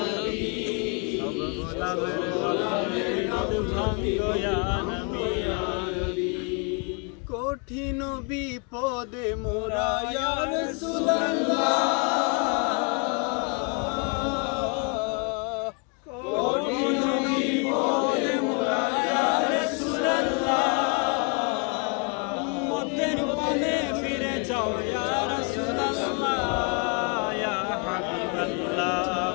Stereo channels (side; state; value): right; quieter; 34.6 dB